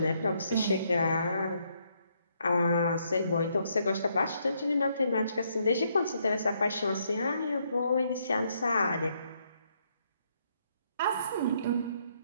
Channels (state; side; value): inverted; both; correlation -0.73